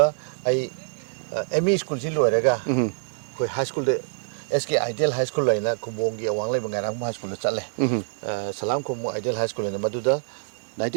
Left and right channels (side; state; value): left; silent; digital silence